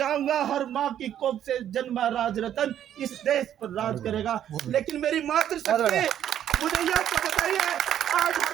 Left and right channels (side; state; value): left; quieter; 10.5 dB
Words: हर माँ की कोख से जन्मा राजरतन इस देश पर राज करेगा। लेकिन मेरी मातृशक्ति मुझे यह तो बताइए, आज